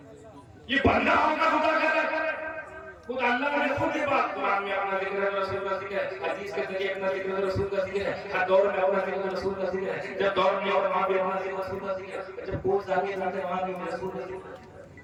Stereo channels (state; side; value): identical; both; correlation 1.00